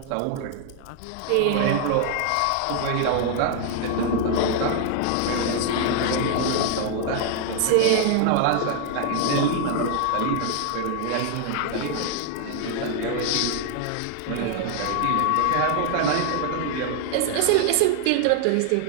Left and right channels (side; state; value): both; different; correlation 0.00